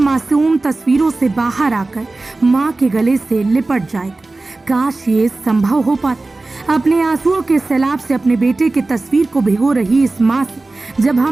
तस्वीरों से बाहर आकर माँ के गले से लिपट जाएगा। काश ये संभव हो पाता। अपने आंसुओं के सैलाब से अपने बेटे की तस्वीर को भिगो रही इस माँ से जब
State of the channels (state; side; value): quieter; left; 3.2 dB